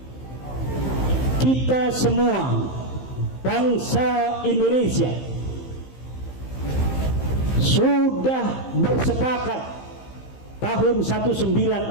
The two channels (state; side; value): late; right; 15 ms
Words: Kita semua bangsa Indonesia sudah bersepakat tahun